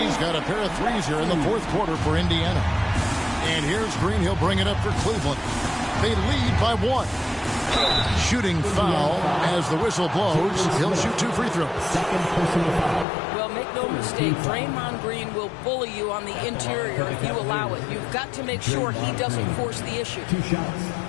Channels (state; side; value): drops out; right; at 13.1 s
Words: got a pair of 3s here in the fourth quarter for Indiana. And here's Green. He'll bring it up for Cleveland. They lead by 1. Shooting foul as the whistle blows. He'll shoot 2 free throws. Well, make no mistake, Draymond Green will bully you on the interior if you allow it. You've got to make sure he doesn't force the issue. 2 shots.